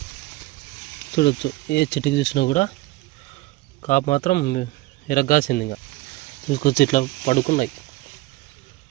చూడవచ్చు. ఏ చెట్టుకి చూసినా కూడా కాపు మాత్రం ఎరగాసింది. ఇంకా చూసుకొచ్చి ఇట్లా పడుకున్నాయి.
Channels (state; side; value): quieter; left; 18.8 dB